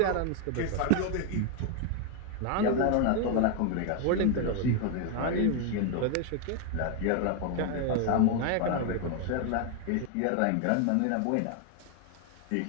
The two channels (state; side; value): different; both; correlation 0.01